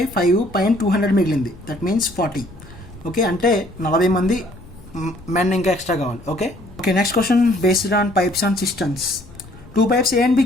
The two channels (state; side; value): noise; left; rumble, 20 dB below the sound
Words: 5 పైన 200 మిగిలింది, దట్ మీన్స్ 40. ఓకే, అంటే 40 మంది మెన్ ఇంకా ఎక్స్ట్రా కావాలి. Okay, next question based on pipes and systems. 2 pipes A and B